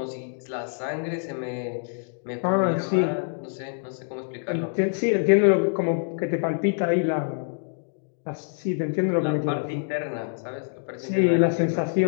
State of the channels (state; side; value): silent; right; digital silence